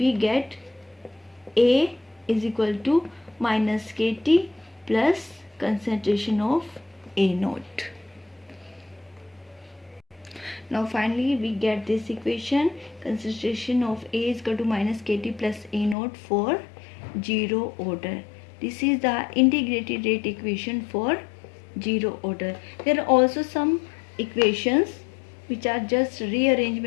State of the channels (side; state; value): right; drops out; at 16.0 s